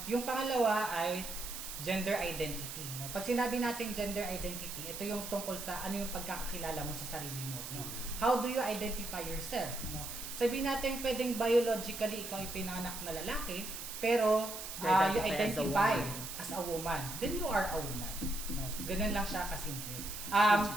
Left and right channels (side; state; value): right; noise; hiss, 8 dB below the sound